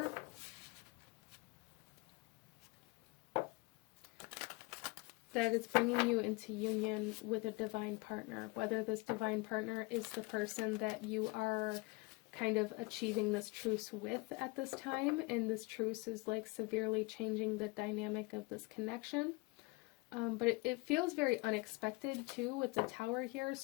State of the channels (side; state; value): right; quieter; 25.6 dB